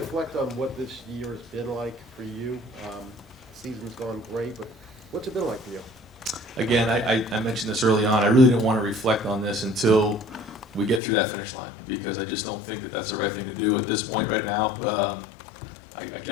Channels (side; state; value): right; drops out; at 11.0 s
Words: on what this year has been like for you? Season's gone great, but what's it been like for you? Again, I mentioned this early on. I really didn't want to reflect on this until we get through that finish line, because I just don't think that that's the right thing to do at this point right now.